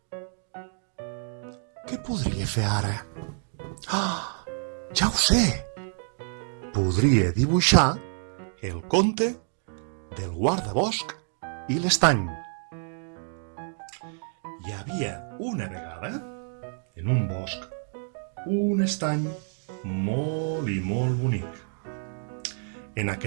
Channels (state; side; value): silent; left; 59 dB below the other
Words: Què podria fer ara? Ah, ja ho sé! Podria dibuixar el conte del guardabosc i l'estany. Hi havia una vegada, en un bosc, un estany molt i molt bonic. En